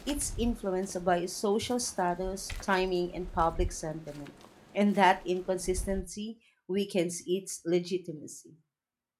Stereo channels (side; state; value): both; identical; correlation 1.00